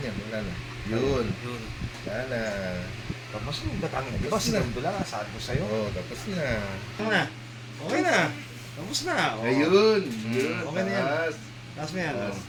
wala na. Yun. Wala na. Tapos yung datang na. Diba sinundo lang, sabi ko sa'yo. Oo, tapos na. Ano na? Okay na. Tapos na. Oh. Ayun. Yun. Okay na yan. Taas. Taas mo yan. Taas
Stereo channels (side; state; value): both; identical; correlation 1.00